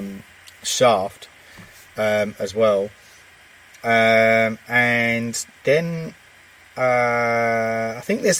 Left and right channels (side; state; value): both; identical; correlation 1.00